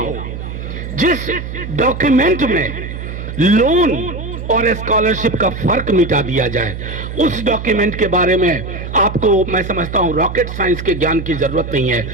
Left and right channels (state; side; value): noise; right; hum, 8 dB below the sound